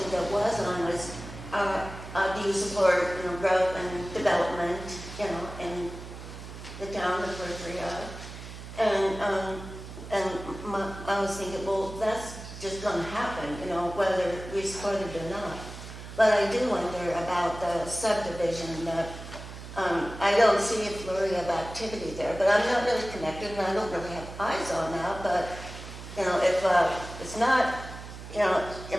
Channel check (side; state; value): right; noise; hum, 12 dB below the sound